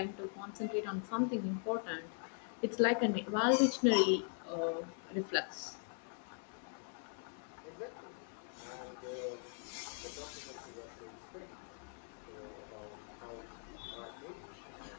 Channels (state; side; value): silent; right; 51 dB below the other